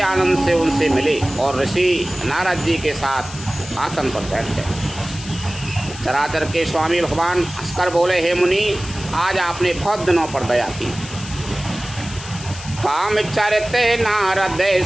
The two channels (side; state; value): left; noise; hiss, 13 dB below the sound